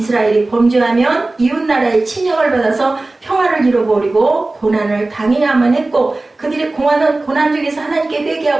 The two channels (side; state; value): left; quieter; 3.0 dB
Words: 범죄하면 이웃나라의 침략을 받아서 평화를 잃어버리고 고난을 당해야만 했고 그들이 고난 중에서 하나님께